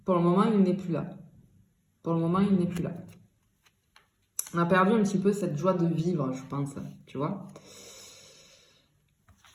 pour le moment, il n'est plus là. Pour le moment, il n'est plus là. On a perdu un petit peu cette joie de vivre, je pense, tu vois.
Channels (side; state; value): both; identical; correlation 1.00